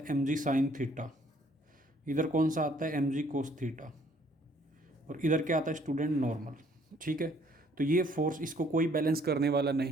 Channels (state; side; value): normal; both; correlation 0.62